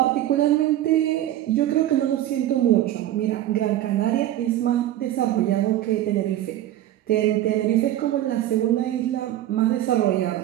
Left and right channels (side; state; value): left; quieter; 13.2 dB